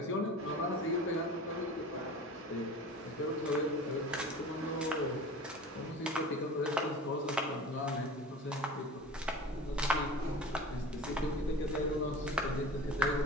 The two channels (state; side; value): normal; both; correlation 0.37